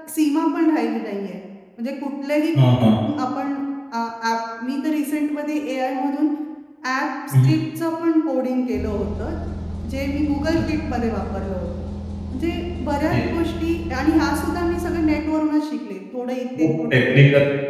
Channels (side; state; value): both; identical; correlation 1.00